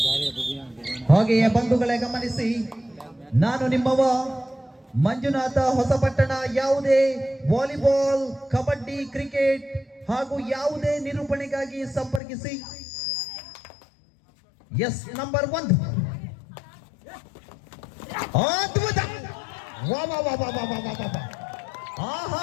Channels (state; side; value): drops out; right; at 12.2 s